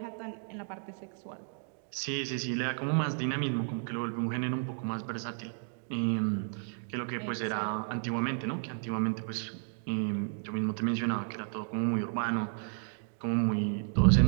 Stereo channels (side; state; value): left; silent; 56 dB below the other